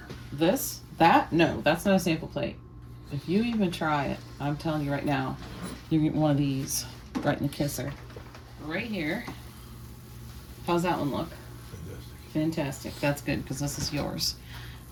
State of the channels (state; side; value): identical; both; correlation 1.00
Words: This? That? No, that's not a sample plate. If you even try it, I'm telling you right now, you get one of these right in the kisser. Right here. How's that one look? Fantastic. Fantastic. That's good, because this is yours.